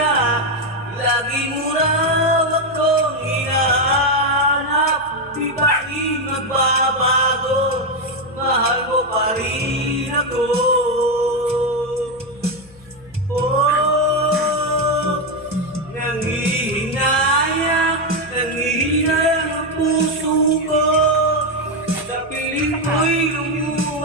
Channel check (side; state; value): left; noise; hum, 25 dB below the sound